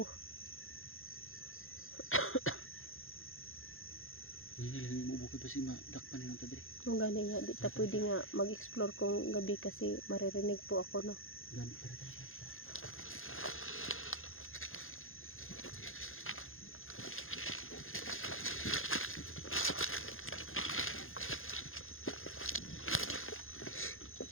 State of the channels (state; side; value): late; right; 0.60 ms